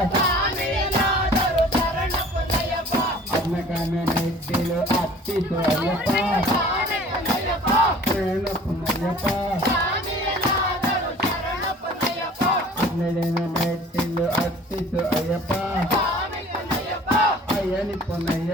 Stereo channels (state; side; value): normal; both; correlation 0.48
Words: ಹದಿನಾಲ್ಕನೇ ಮೆಟ್ಟಿಲು ಅರ್ಪಿಸು ಅಯ್ಯಪ್ಪ. ಶರಣ ಪುಂಡಯ್ಯಪ್ಪ. ಹನ್ನೆರಡನೇ ಮೆಟ್ಟಿಲು ಅರ್ಪಿಸು ಅಯ್ಯಪ್ಪ. ಅಯ್ಯನಿ